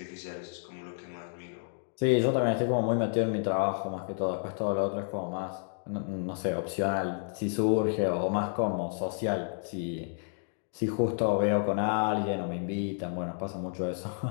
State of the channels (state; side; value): silent; right; digital silence